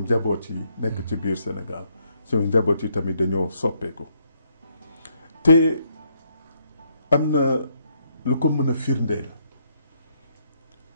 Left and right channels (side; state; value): both; inverted; correlation -0.73